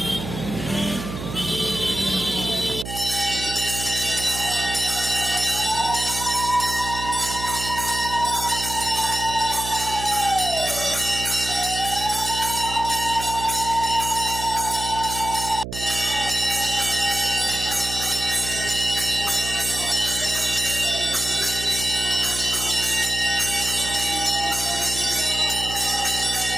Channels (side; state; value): right; noise; hum, 8 dB below the sound